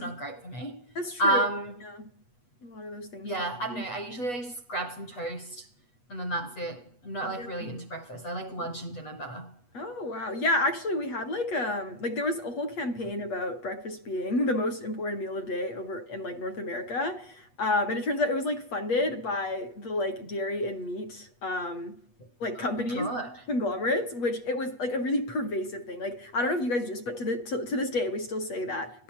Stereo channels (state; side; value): late; right; 8.2 ms